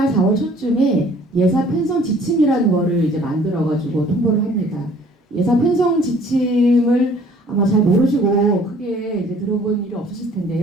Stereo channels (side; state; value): both; normal; correlation 0.55